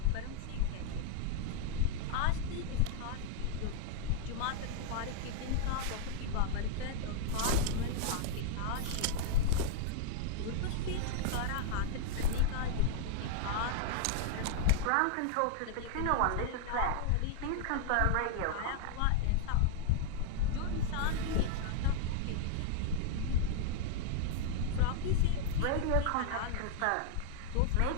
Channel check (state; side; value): different; both; correlation 0.00